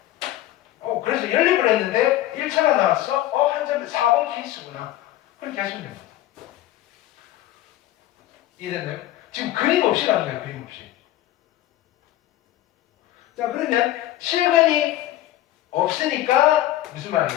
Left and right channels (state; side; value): quieter; right; 14.5 dB